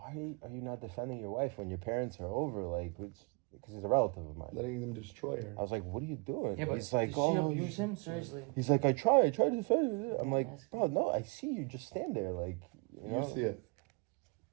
are you not defending your wife when your parents are over? Like, because he's a relative of mine." Letting them destroy her. I was like, "What are you doing?" Yeah, but he's like, does she "Oh." abuse him? Seriously. He's like, I try to defend it. I'm like, bro, no, I see you just stand there, like, you know. You see it.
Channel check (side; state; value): left; quieter; 31.2 dB